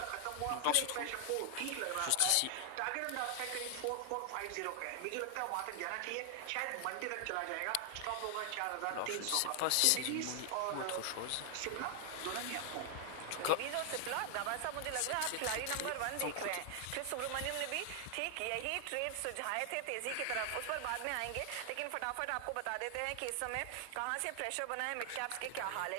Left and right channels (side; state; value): both; different; correlation 0.00